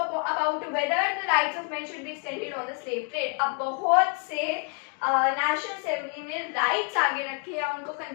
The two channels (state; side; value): quieter; right; 39.4 dB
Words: whether the rights of men should be extended on the slave trade. अब बहुत से नेशनल असेंबली ने राइट्स आगे रखे या उनको